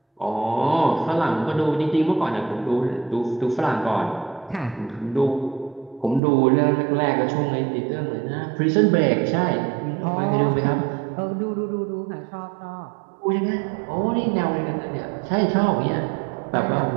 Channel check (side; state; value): left; drops out; at 6.2 s